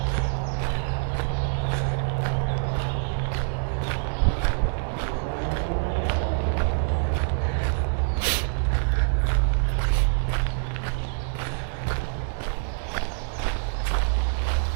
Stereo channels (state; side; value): silent; left; digital silence